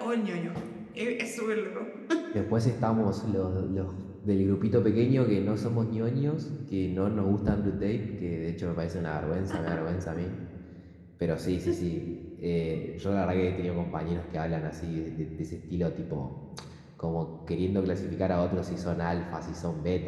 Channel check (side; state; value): both; identical; correlation 1.00